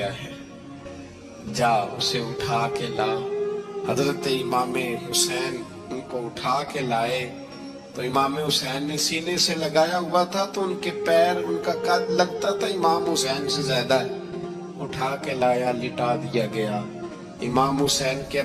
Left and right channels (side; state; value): both; identical; correlation 1.00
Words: ہے، جا اسے اٹھا کے لا۔ حضرت امام حسین ان کو اٹھا کے لائے تو امام حسین نے سینے سے لگایا ہوا تھا تو ان کے پیر، ان کا قد لگتا تھا امام حسین سے زیادہ ہے، اٹھا کے لایا، لٹا دیا گیا۔ امام حسین کے